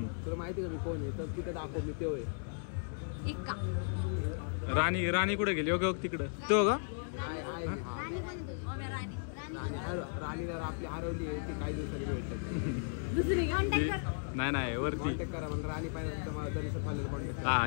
तुला माहिती का मी कोण आहे? तर तिथं दाखव मी तेव्हा आहे. एक का राणी कुठे गेली? ओके तिकडं तो का? राणी पण राणीला आपली हरवली आहे. ती काही दिवसांनी भेटतात. दुसरी कॉन्टॅक्ट कर. नाही वरती कॉन्टॅक्ट करा. मला राणी पाहिजे तर मला तरी फायनल कॉन्टॅक्ट करा. हा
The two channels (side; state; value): right; silent; digital silence